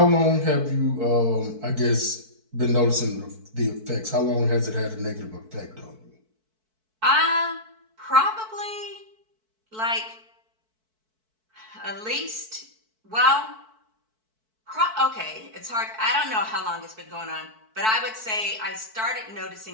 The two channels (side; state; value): left; late; 4.6 ms